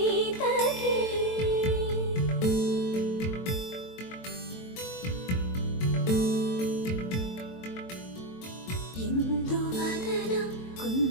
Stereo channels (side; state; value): right; late; 22 ms